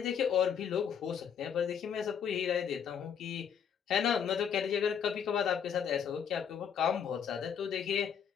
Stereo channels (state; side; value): quieter; right; 7.8 dB